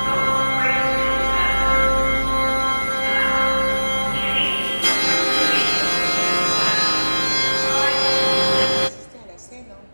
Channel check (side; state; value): both; inverted; correlation -1.00